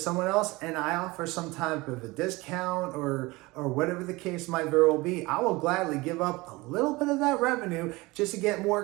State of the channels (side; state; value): left; quieter; 22.3 dB